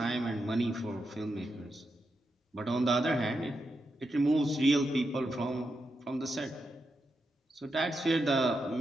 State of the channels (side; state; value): both; normal; correlation 0.86